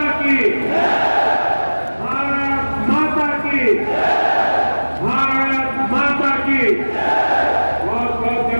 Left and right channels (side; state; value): both; inverted; correlation -1.00